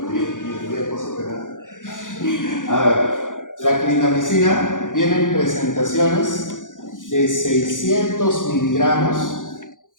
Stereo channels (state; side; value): late; right; 0.88 ms